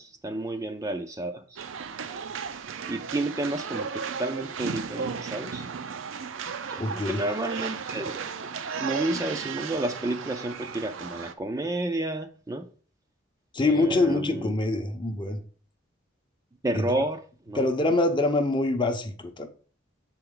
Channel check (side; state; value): both; normal; correlation 0.51